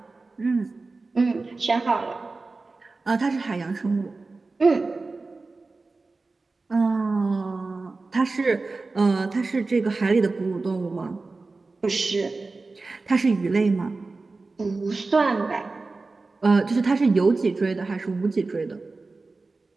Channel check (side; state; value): left; quieter; 3.7 dB